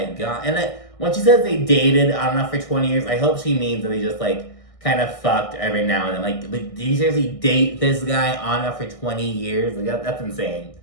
god. And then when she says they dated on and off for 20 years, I hope she means that they just, like, kind of fucked every now and then. Like, did you seriously date this guy on and off for 20 years? Like, that's insane.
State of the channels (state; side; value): late; right; 1.6 ms